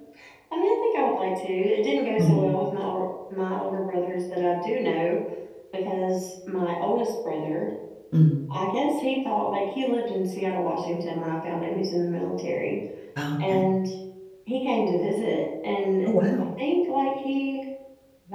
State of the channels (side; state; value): both; identical; correlation 1.00